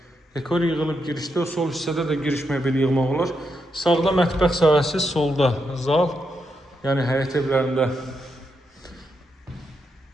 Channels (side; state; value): both; normal; correlation 0.82